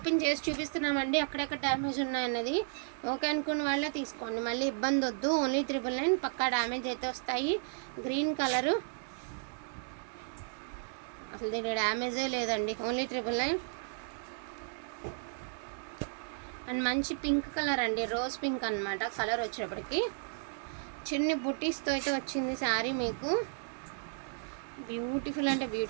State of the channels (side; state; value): left; silent; digital silence